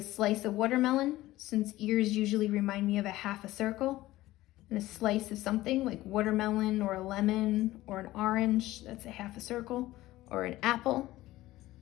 slice of watermelon, since ears usually remind me of a half a circle. And a slice of something like watermelon or a lemon or an orange, that's a half a circle. Or an apple.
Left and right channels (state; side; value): quieter; right; 16.7 dB